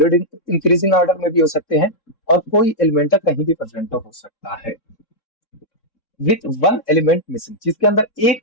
ऑर्डर में भी हो सकते हैं, और कोई एलिमेंट कहीं भी प्रेजेंट हो सकता है। विथ वन एलिमेंट मिसिंग, जिसके अंदर एक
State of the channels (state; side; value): late; right; 3.6 ms